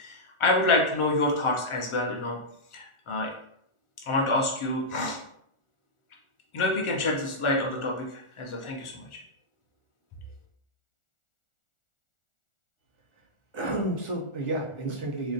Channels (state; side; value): late; right; 1.4 ms